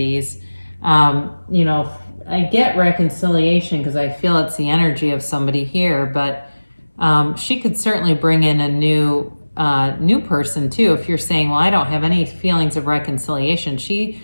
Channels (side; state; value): both; inverted; correlation -1.00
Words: You know, I get reconciliation because I feel it's the energy of somebody here, but she could certainly bring in a new person too. If you're saying, well, I don't have any feelings of reconciliation,